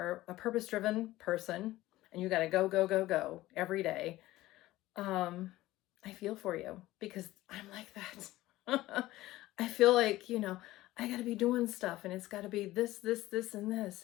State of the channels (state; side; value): quieter; right; 16.8 dB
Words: a purpose-driven person and you got to go, go, go, go every day. Um, I feel for you because I'm like that. I feel like, I got to be doing stuff and it's got to be this, this, this, and